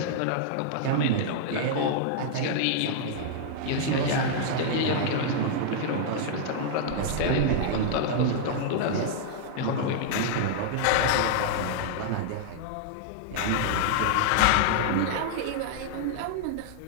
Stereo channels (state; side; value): different; both; correlation -0.01